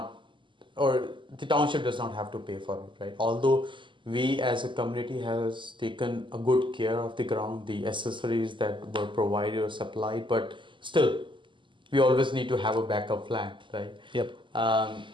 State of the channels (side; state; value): left; late; 0.24 ms